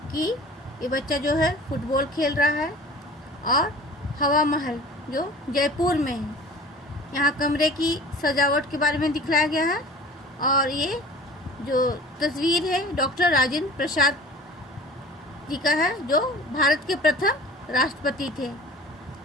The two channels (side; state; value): both; normal; correlation 0.43